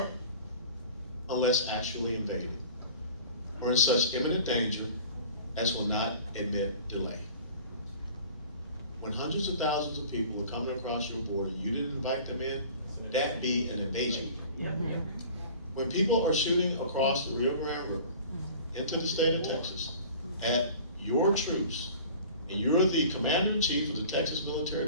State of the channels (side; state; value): both; inverted; correlation -0.44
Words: unless actually invaded, or in such imminent danger as will not admit delay. When hundreds of thousands of people are coming across your border and you didn't invite them in, that be an invasion. When people are shooting across the Rio Grande River into the state of Texas at your troops, and you're the commander-in-chief of the Texas